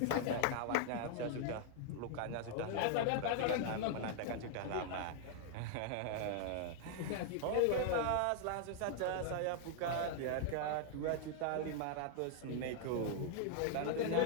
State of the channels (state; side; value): different; both; correlation -0.01